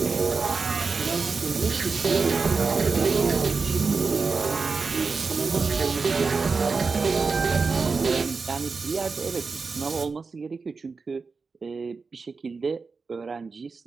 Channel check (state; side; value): quieter; left; 4.6 dB